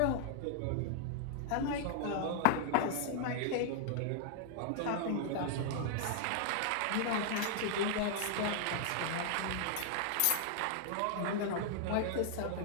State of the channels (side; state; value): both; different; correlation 0.00